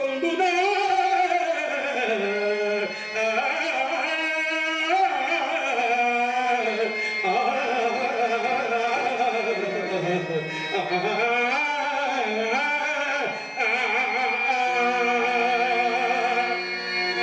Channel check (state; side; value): identical; both; correlation 1.00